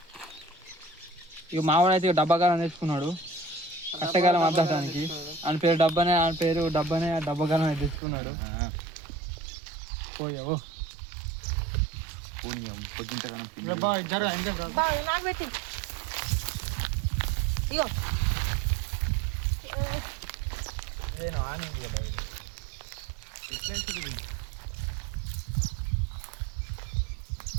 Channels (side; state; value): left; drops out; at 8.0 s